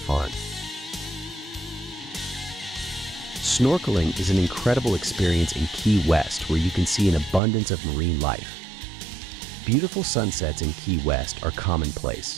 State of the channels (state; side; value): drops out; left; at 7.4 s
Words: Snorkeling is an incredible experience in Key West where you can see an abundance of marine life. Beautiful sunsets in Key West are